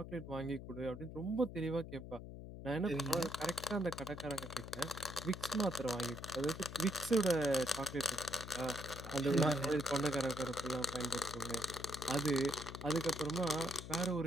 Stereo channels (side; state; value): left; noise; hum, 11 dB below the sound